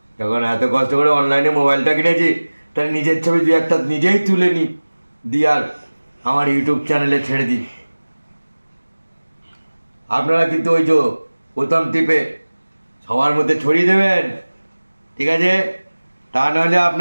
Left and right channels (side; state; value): both; inverted; correlation -1.00